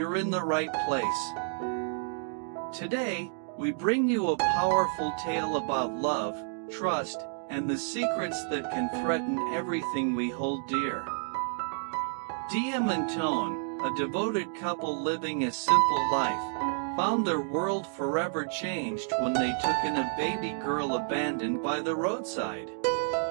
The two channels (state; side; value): silent; left; digital silence